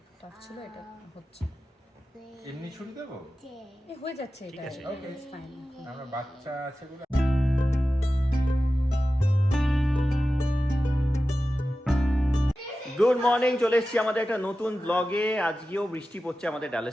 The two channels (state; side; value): normal; both; correlation 0.94